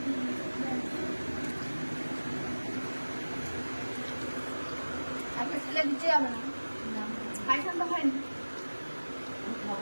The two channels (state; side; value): inverted; both; correlation -1.00